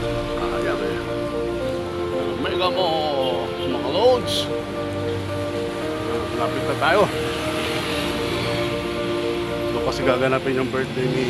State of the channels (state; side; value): identical; both; correlation 1.00